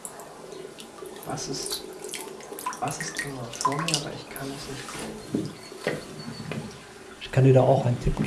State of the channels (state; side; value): identical; both; correlation 1.00